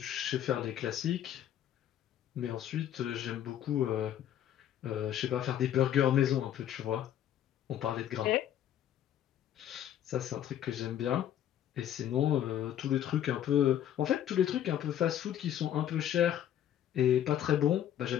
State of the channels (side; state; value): right; quieter; 10.8 dB